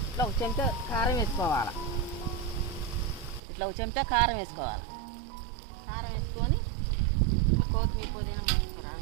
ఇట్లా ఒక చెంచా కారం వేసుకోవాలి. ఇట్లా ఒక చెంచా కారం వేసుకోవాలి. కారం వేసుకొని కొత్తిమీర, పుదీనా, మెంతికూర,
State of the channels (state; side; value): drops out; left; at 3.4 s